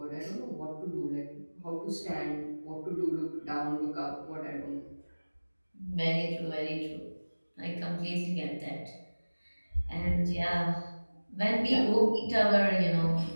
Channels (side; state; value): both; inverted; correlation -1.00